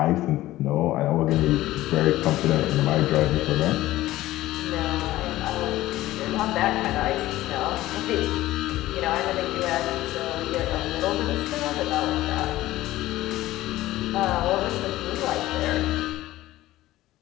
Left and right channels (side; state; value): right; quieter; 16.0 dB